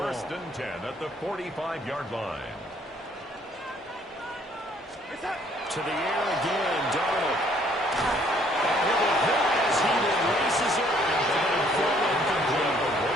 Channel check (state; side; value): normal; both; correlation 0.62